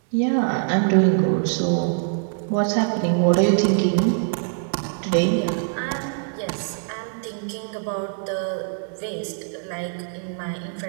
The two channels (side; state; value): left; silent; digital silence